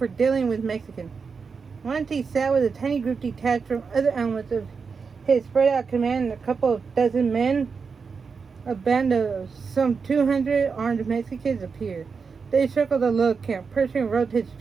dealing with Mexicans. Once he sat with a tiny group detached from other elements of his spread out command and a couple of dozen men, a band of some 200 armed Mexicans appeared. They circled the little camp. Pershing rubbed his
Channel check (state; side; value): quieter; left; 5.3 dB